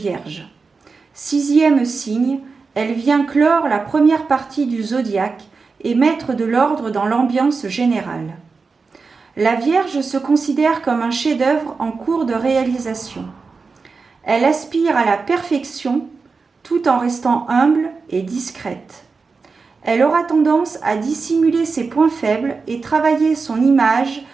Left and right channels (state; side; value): quieter; left; 4.6 dB